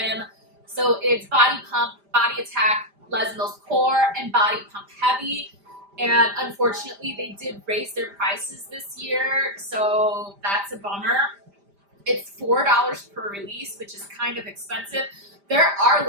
So it's Body Pump, Body Attack, Les Mills Core, and Body Pump Heavy. And unfortunately, they did raise their prices this year, so that's a bummer. It's $4 per release, which is kind of expensive. There are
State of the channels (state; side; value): late; left; 5.0 ms